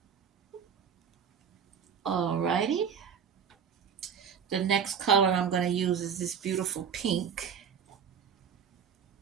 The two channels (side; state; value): left; quieter; 7.3 dB